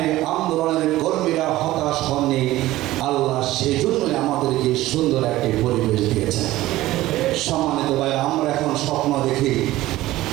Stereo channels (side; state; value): left; quieter; 16.4 dB